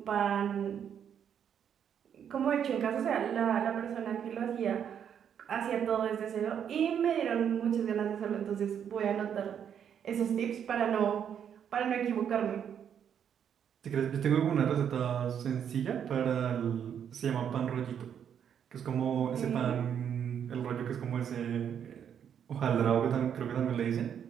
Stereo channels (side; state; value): left; quieter; 8.5 dB